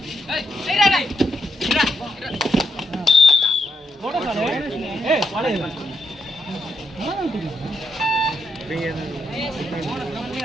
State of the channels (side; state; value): both; normal; correlation 0.79